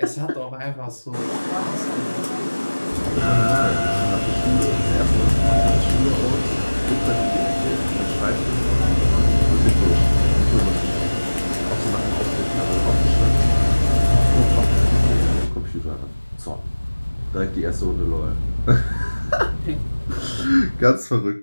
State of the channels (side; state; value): both; inverted; correlation -1.00